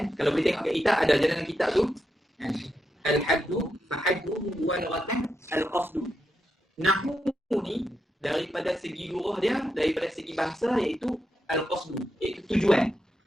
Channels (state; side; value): normal; both; correlation 0.85